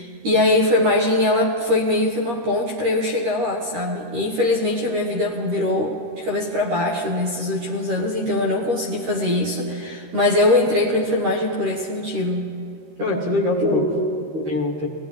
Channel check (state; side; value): late; left; 13 ms